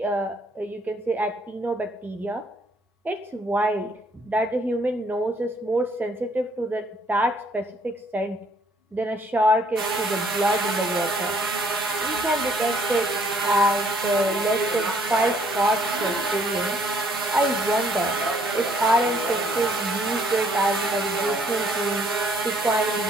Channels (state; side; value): normal; both; correlation 0.64